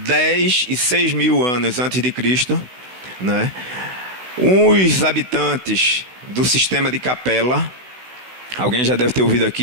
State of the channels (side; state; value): left; late; 16 ms